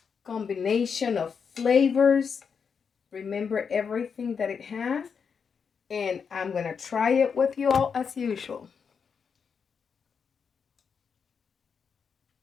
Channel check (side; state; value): right; quieter; 6.2 dB